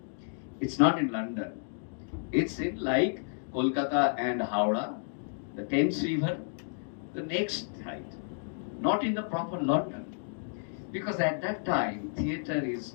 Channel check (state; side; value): silent; right; digital silence